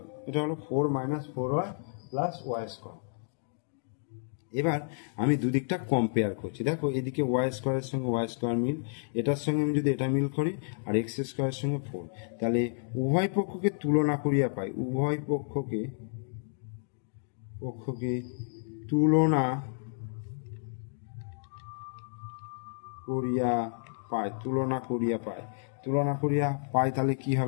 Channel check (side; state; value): right; silent; digital silence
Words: এটা হলো 4 minus 4y plus Y square. এবার আমি দুদিকটা কম্পেয়ার করছি। দেখো এদিকে ওয়াই স্কোয়ারের সঙ্গে ওয়াই স্কোয়ার মিল, এটার সঙ্গে আমি যদি এটা মিল করি, আর এক্স স্কোয়ারের সঙ্গে 4, তাহলে উভয় পক্ষকে তুলনা করিয়া পাই, উভয় পক্ষকে তুলনা করিয়া পাই, তুলনা করিয়া পাই, তুলনা করিয়া পাই, তাহলে কি